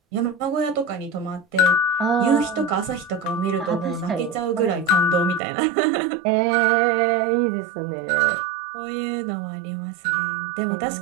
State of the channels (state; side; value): drops out; left; at 5.4 s